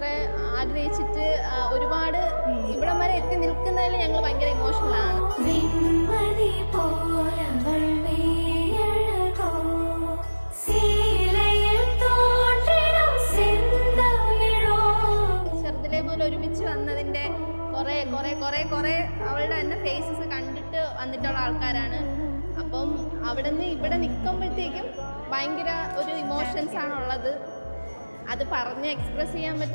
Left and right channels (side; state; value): both; inverted; correlation -1.00